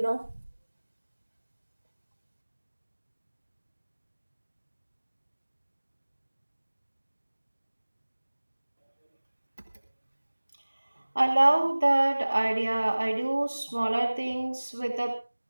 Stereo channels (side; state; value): both; inverted; correlation -1.00